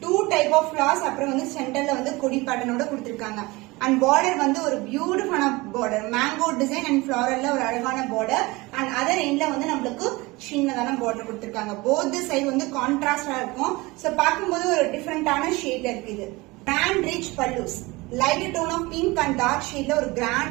2 type of florals, அப்புறம் வந்து சென்டர்ல வந்து கொடி பேட்டர்னோட கொடுத்திருக்காங்க. அண்ட் பார்டர் வந்து ஒரு பியூட்டிஃபுல்லான பார்டர், மேங்கோ டிசைன் அண்ட் ஃபிளாரல்ல ஒரு அழகான பார்டர். அண்ட் அதர் எண்ட்ல வந்து நம்மளுக்கு சின்னதான பார்டர் கொடுத்திருக்காங்க. போத் சைடு வந்து கான்ட்ராஸ்டா இருக்கும். சோ பார்க்கும்போது ஒரு டிஃபரெண்டான ஷேட்ல இருக்கு. இது grand rich pallus, light tone of pink and dark ஷேட்ல ஒரு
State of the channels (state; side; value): quieter; left; 22.8 dB